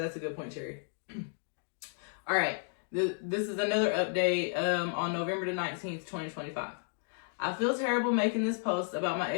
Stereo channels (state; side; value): silent; right; 56 dB below the other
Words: a good point, Cherry. All right, this is another update on November the 19th, 2025. I feel terrible making this post about my